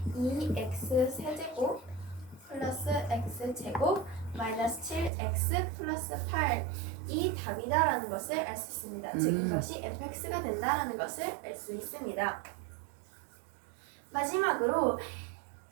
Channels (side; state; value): left; drops out; at 5.1 s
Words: 2x 세제곱 플러스 x제곱 마이너스 7x 플러스 8 이 답이다라는 것을 알 수 있습니다. 즉 이것이 fx가 된다라는 것을 알 수 있습니다. 마지막으로